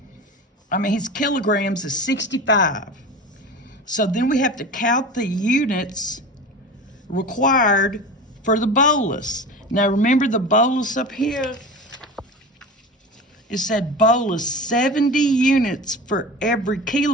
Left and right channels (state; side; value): normal; both; correlation 0.31